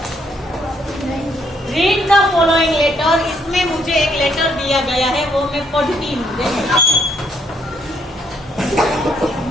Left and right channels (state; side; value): normal; both; correlation 0.71